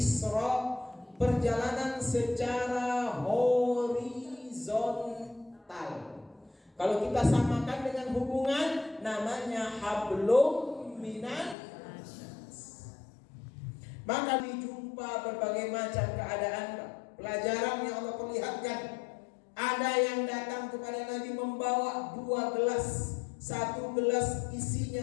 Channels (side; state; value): right; drops out; at 11.6 s